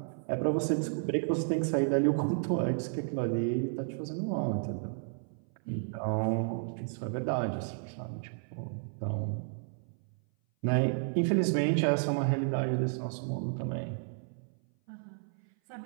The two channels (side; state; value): left; silent; 56 dB below the other